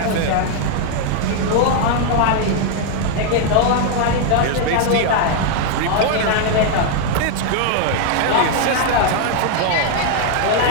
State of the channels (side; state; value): both; different; correlation 0.00